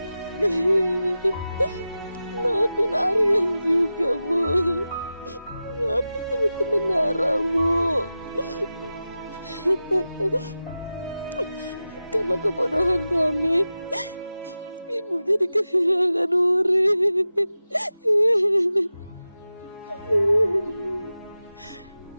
Maafin Aryan juga, Bu. Maafin teman-teman Nara, Bu. Karena kebodohan kami, Ibu jadi kehilangan Wuri.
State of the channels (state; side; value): inverted; both; correlation -0.94